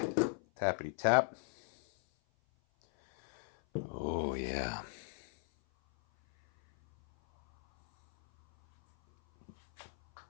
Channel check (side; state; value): right; silent; 54 dB below the other